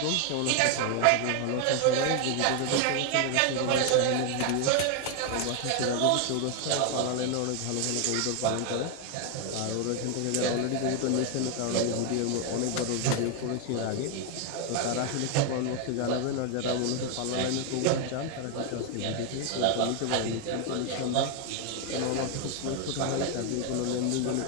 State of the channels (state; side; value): different; both; correlation 0.01